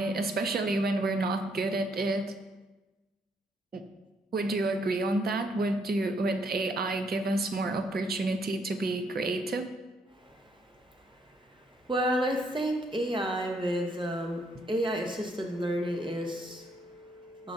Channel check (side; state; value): both; normal; correlation 0.71